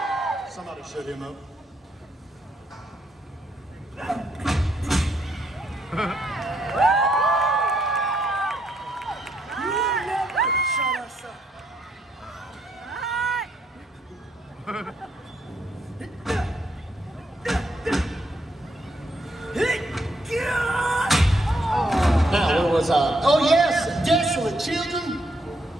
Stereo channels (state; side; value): normal; both; correlation 0.75